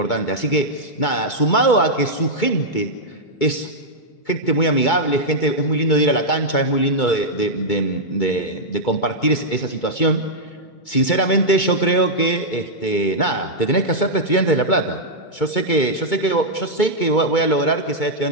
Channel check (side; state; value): right; late; 2.2 ms